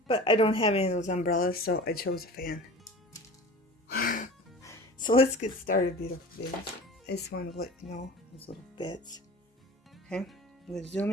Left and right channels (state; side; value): normal; both; correlation 0.38